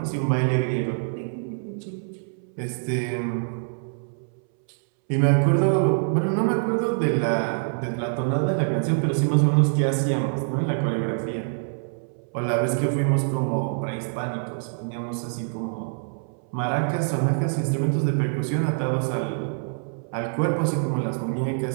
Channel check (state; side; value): silent; left; 62 dB below the other